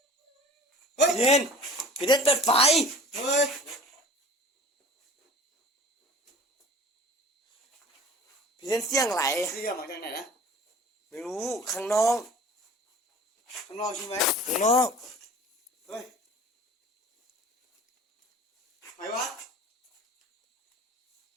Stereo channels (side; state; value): both; normal; correlation 0.43